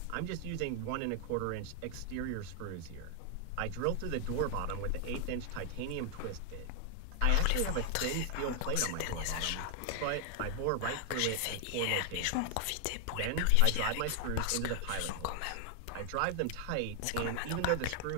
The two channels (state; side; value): different; both; correlation 0.00